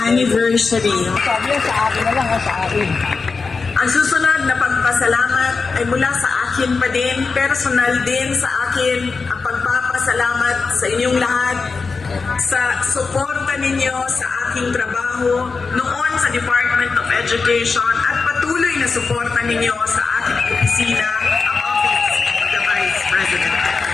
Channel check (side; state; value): right; quieter; 4.5 dB